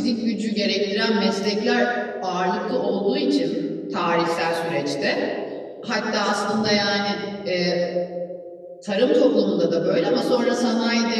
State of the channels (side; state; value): both; identical; correlation 1.00